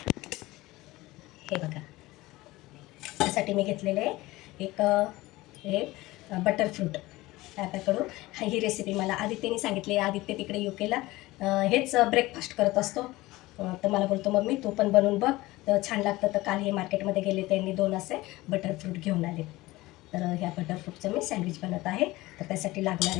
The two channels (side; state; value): right; quieter; 19.3 dB